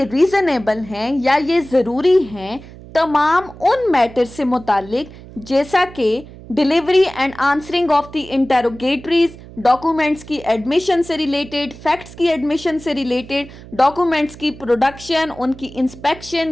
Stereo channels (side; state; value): right; noise; hum, 18 dB below the sound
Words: रीजनेबल हैं या ये ज़रूरी हैं तमाम उन मैटर से मुतालिक जैसा कि delivery and answering of the interrogatories, documents की एडमिशन से रिलेटेड, फैक्ट्स की एडमिशन से रिलेटेड, डॉक्यूमेंट्स की प्रोडक्शन, उनकी इंस्पेक्शन